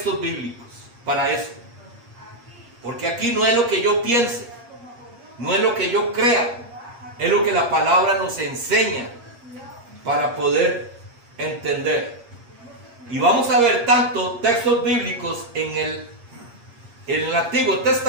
bíblicos para eso. Porque aquí no es lo que yo piense, no es lo que yo crea, es lo que la palabra nos enseña para poder entender. Y vamos a ver tanto textos bíblicos en el Antiguo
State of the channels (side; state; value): left; late; 8.5 ms